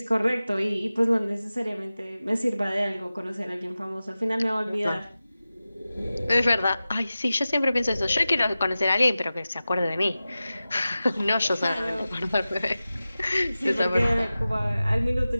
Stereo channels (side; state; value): both; inverted; correlation -0.95